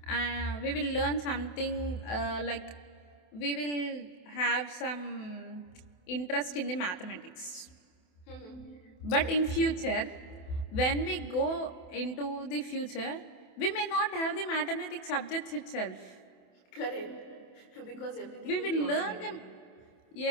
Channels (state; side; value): late; right; 28 ms